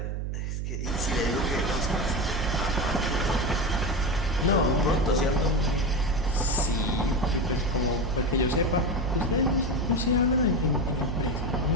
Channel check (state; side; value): noise; right; hum, 3 dB below the sound